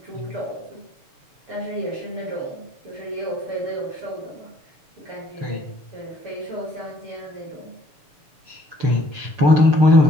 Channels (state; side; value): late; left; 6.9 ms